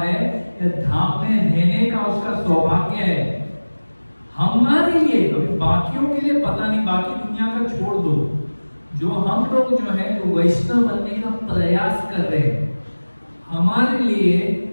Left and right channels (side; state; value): both; inverted; correlation -1.00